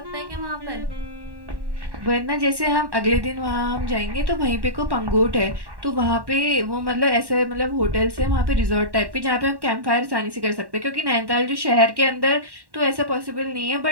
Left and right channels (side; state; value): left; late; 1.1 ms